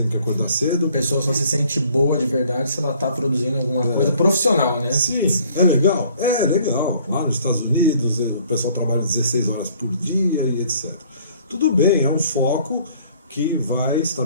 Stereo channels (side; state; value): both; inverted; correlation -0.58